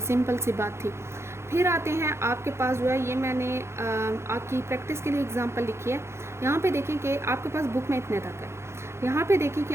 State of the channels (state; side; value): late; left; 0.13 ms